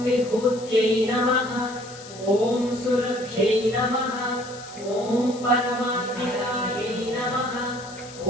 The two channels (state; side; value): noise; left; hiss, 17 dB below the sound